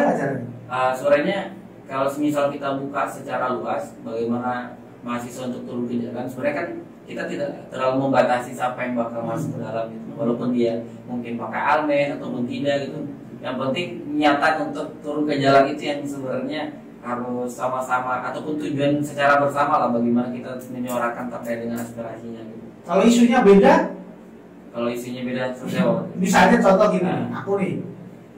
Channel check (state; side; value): identical; both; correlation 1.00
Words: caranya? Suaranya kalau semisal kita buka secara luas bagaimana mahasiswa untuk turun ke jalan, sebenarnya kan kita tidak terlalu membatasi siapa yang bakal masuk ke dalam gitu. Walaupun dia mungkin pakai almen ataupun tidak gitu. Yang penting nyata untuk turun ke jalan itu yang sebenarnya harus sama-sama ataupun tujuan secara bersama lah, bagaimana kita menyuarakan terkait dengan aspirasinya gitu. Kalau isunya beda? Kalau isunya beda seperti apa? Misalnya contoh gini, aku nih,